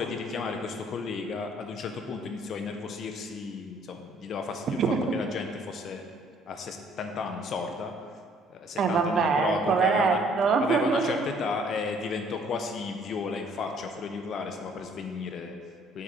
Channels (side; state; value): both; normal; correlation 0.60